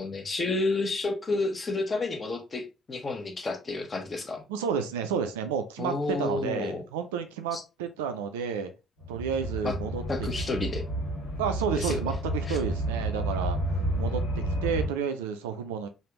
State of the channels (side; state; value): both; normal; correlation 0.45